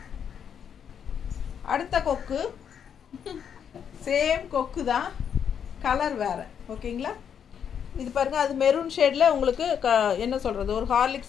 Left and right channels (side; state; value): right; quieter; 8.0 dB